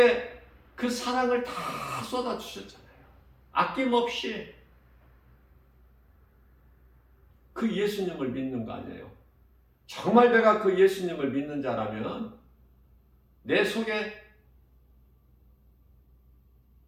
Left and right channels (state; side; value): identical; both; correlation 1.00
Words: 그 사랑을 다 쏟아주셨잖아요. 아낌없이. 그 예수님을 믿는 거 아니에요. 정말 내가 그 예수님을 믿는 자라면 내 속에